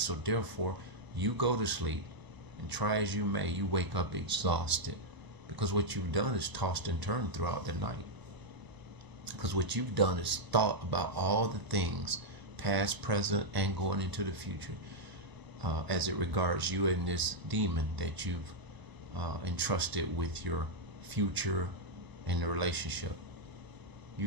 therefore, you go to sleep, and try as you may, you wake up exhausted because what you've done is tossed and turned throughout the night. Because because what you've done is thought about all the things, past, present, and going into the future, as it regards you and this demon that you've entrusted with your future and the relationship. You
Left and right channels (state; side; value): late; left; 1.0 ms